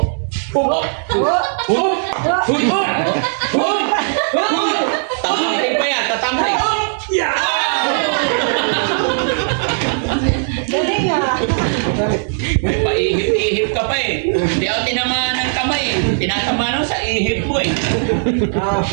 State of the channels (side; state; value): left; silent; digital silence